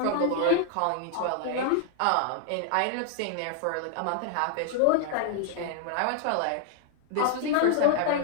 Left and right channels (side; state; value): both; different; correlation 0.00